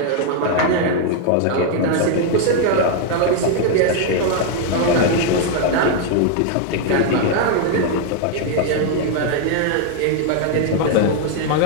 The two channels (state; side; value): different; both; correlation 0.00